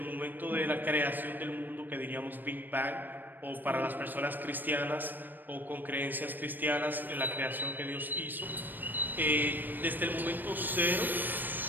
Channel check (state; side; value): late; left; 0.091 ms